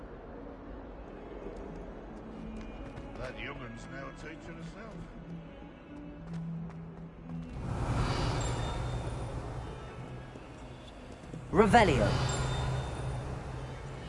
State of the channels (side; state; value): both; identical; correlation 1.00